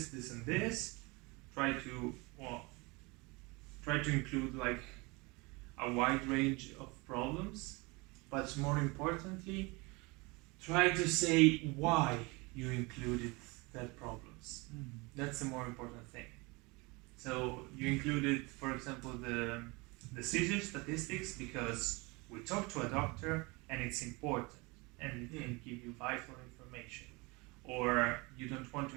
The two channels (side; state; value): left; quieter; 26.2 dB